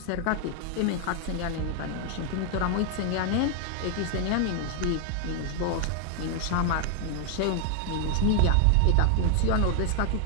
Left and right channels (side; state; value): both; different; correlation 0.00